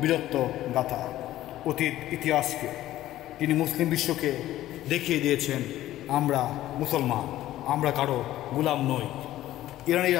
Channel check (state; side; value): quieter; right; 14.3 dB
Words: বীরত্ব গাথা, অতীত ইতিহাসকে। তিনি মুসলিম বিশ্বকে দেখিয়ে দিয়েছেন আমরা মুসলমান, আমরা কারো গোলাম নই।